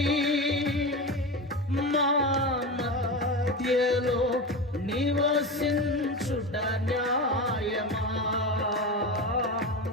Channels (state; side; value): normal; both; correlation 0.23